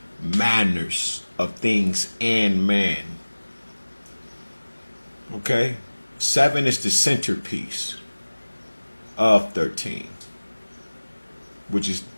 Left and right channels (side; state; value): both; inverted; correlation -1.00